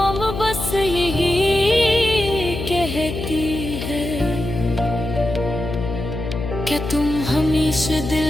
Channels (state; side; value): noise; left; hum, 6 dB below the sound